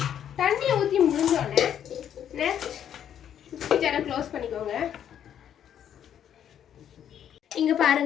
தண்ணியை ஊத்தி முடிஞ்சோடனே நெக்ஸ்ட் மிக்ஸி ஜாரை க்ளோஸ் பண்ணிக்கோங்க. இங்க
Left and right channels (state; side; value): quieter; right; 9.6 dB